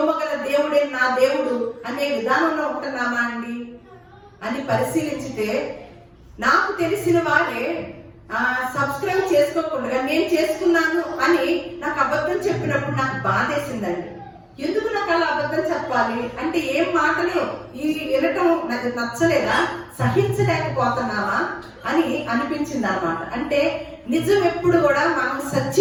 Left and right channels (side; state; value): both; identical; correlation 1.00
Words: దేవుడే నా దేవుడు అనే విధానంలో ఉంటున్నామా అండి అని పరిశీలించితే, నాకు తెలిసిన వారే సబ్స్క్రైబ్ చేసుకోకుండా నేను చేసుకున్నాను అని నాకు అబద్ధం చెప్పినప్పుడు నాకు బాధేసిందండి. ఎందుకు నాకు అలా అబద్ధం చెప్పాలి అంటే ఏం మాటలు ఈ వినటం నాకు నచ్చలేదా, సహించలేకపోతున్నావా అని అనిపించింది అన్నమాట. అంటే నిజం ఎప్పుడు కూడా, మనం